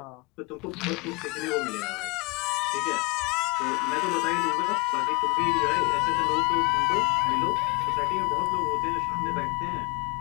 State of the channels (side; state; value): right; quieter; 28.1 dB